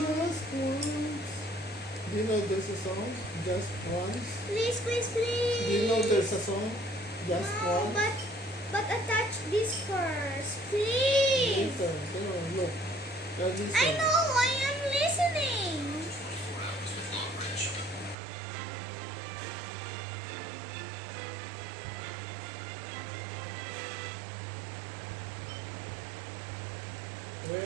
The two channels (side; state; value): left; drops out; at 18.2 s